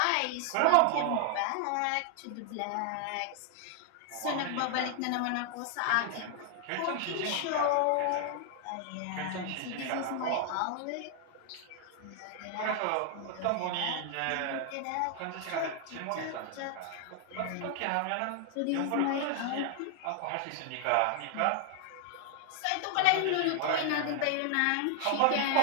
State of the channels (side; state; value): both; different; correlation 0.00